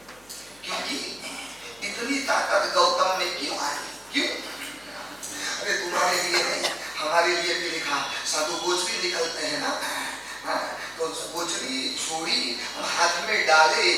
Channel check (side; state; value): left; noise; hum, 29 dB below the sound